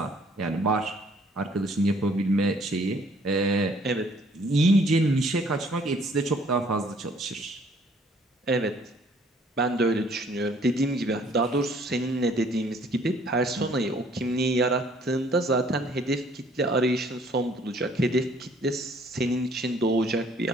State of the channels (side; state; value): both; normal; correlation 0.60